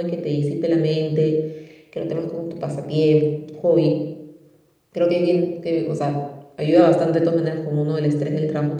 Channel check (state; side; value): identical; both; correlation 1.00